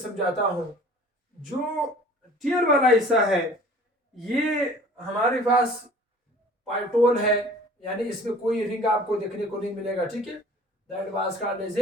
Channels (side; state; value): both; normal; correlation 0.48